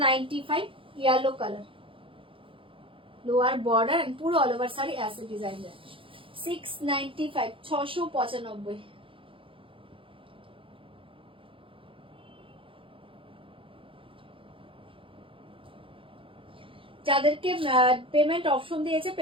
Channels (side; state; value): left; late; 0.25 ms